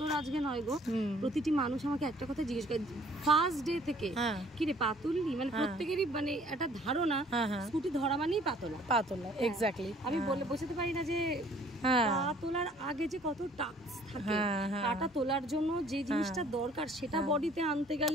আজকে নয় গো, প্রতিটি মানুষ আমাকে একটা কথা জিজ্ঞেস করে ফার্স্ট ডে থেকে, কি রে পা তুললি? মানে প্রত্যেকেরই মানে একটা ধারণা স্কুটি ধরা মানেই পাতলা। এক্স্যাক্টলি। আমি বলে বোঝাতে পারি না যে পা তোলার আগে যে কত টাস্ক থাকে, পাটা তোলার জন্য যে জিনিসটা দরকার সেটা বডিতে আনতে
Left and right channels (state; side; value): normal; both; correlation 0.57